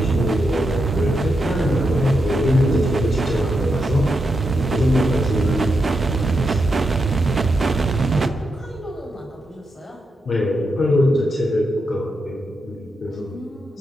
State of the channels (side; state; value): both; normal; correlation 0.85